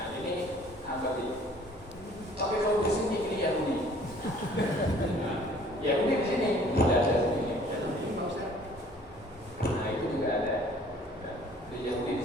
ini apa sih? Tapi kalau di sini ini Yahudi. Yahudi di sini tidak ada sini. Yahudi nggak usah. Nah itu juga ada. Di Yahudi di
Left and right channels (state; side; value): normal; both; correlation 0.54